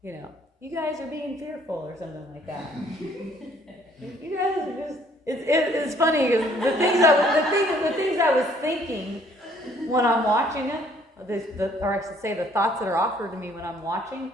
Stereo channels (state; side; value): normal; both; correlation 0.62